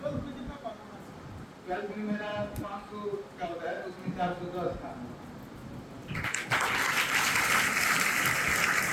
में कितना परफॉर्मेंस? 12th में मेरा 500 का होता है, उसमें 410 था।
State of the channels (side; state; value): both; identical; correlation 1.00